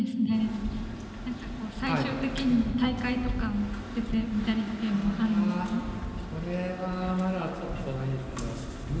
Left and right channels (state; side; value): identical; both; correlation 1.00